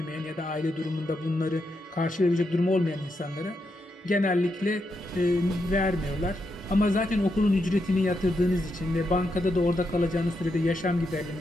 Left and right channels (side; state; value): both; normal; correlation 0.83